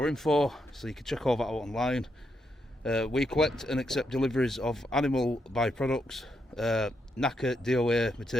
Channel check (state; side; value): normal; both; correlation 0.81